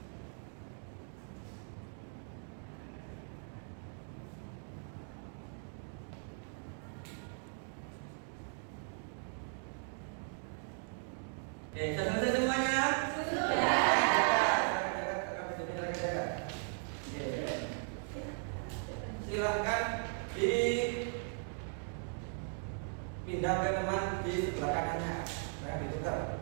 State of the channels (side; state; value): left; silent; 52 dB below the other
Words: Oke, sudah selesai semuanya? Silahkan dipindah ke teman di sebelah kanannya. Jangan ditukar.